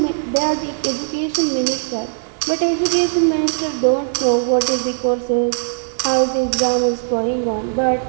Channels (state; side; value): silent; left; digital silence